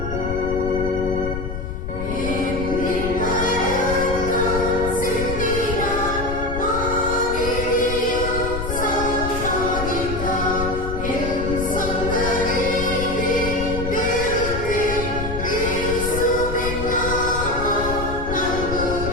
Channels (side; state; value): left; noise; rumble, 5 dB below the sound